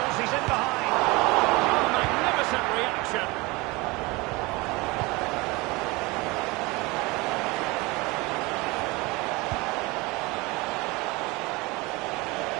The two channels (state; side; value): quieter; left; 24.0 dB